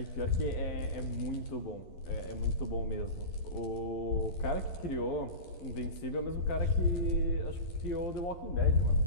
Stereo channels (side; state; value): right; late; 12 ms